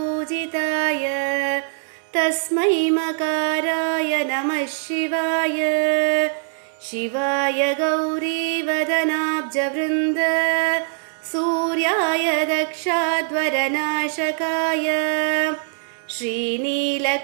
तस्मै मकाराय नमः शिवाय शिवाय गौरीवदनाब्जवृन्द सूर्याय दक्षाध्वरनाशकाय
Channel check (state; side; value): silent; left; digital silence